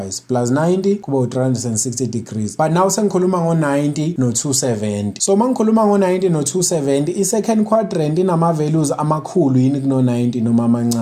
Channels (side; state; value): both; identical; correlation 1.00